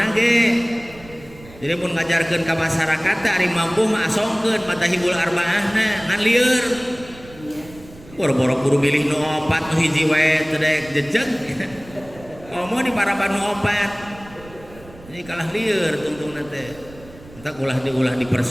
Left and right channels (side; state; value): right; noise; rumble, 20 dB below the sound